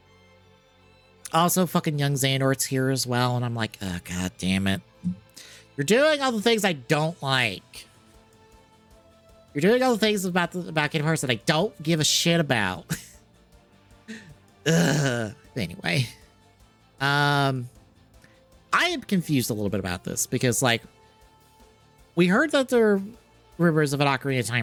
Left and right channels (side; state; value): both; identical; correlation 1.00